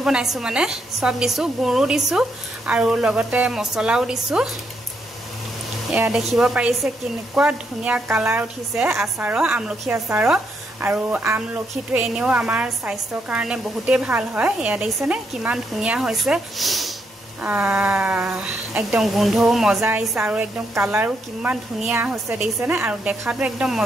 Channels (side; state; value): both; normal; correlation 0.77